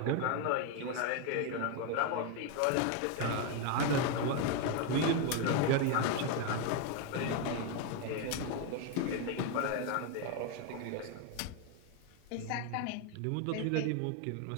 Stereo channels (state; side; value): different; both; correlation 0.01